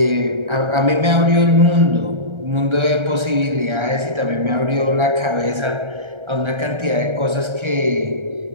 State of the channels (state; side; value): late; left; 1.3 ms